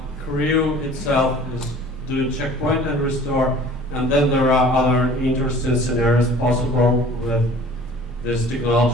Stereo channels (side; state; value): both; normal; correlation 0.47